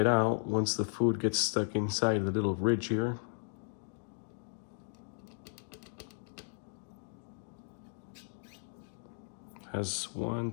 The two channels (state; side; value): silent; right; digital silence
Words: out once the food gets stuck inside the little ridge here. Has 1,